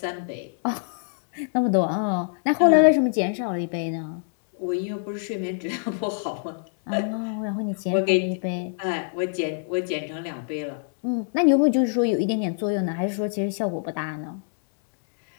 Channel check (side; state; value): right; silent; digital silence